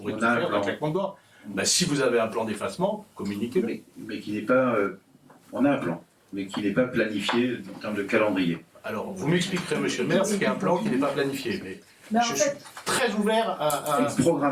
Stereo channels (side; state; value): both; identical; correlation 1.00